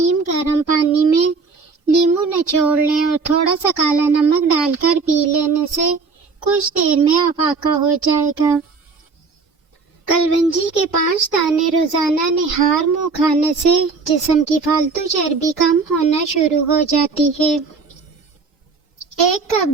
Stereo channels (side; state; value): left; quieter; 4.5 dB